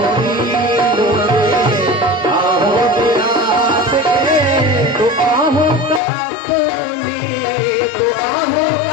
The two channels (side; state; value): right; drops out; at 6.0 s